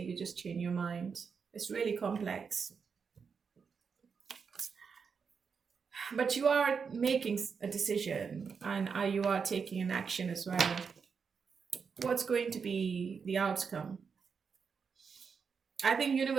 you just change your mind. It's really complex. But you are making a decision, and you are taking an action as well. What's going to be the outcome? I think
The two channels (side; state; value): left; quieter; 5.9 dB